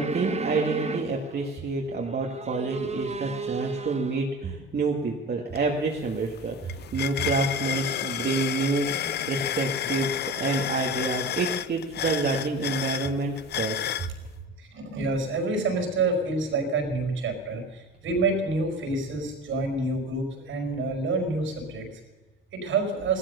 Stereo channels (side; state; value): both; normal; correlation 0.34